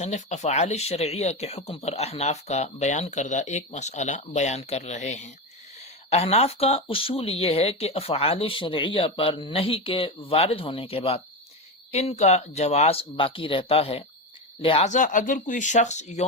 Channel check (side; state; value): both; normal; correlation 0.17